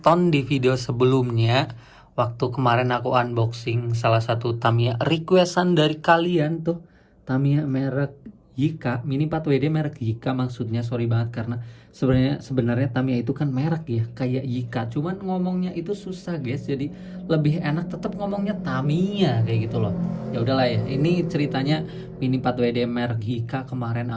di video sebelumnya, waktu kemarin aku unboxing salah satu Tamiya requestan dari kalian tuh, Tamiya merek Yika, Mini 4WD merek Yika maksudnya, sorry banget karena sebenarnya Tamiya itu kan merek ya, kayak Yika, cuman ngomongnya itu susah guys, jadi lebih enak tetap ngomongnya Tamiya kayak gitu loh. Ya udahlah ya, ini ceritanya Mini 4WD merek Yika kemarin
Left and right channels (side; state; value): both; identical; correlation 1.00